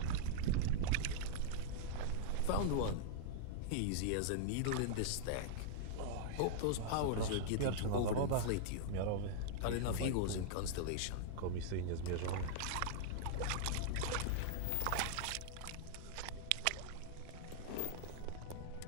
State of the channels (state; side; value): different; both; correlation -0.01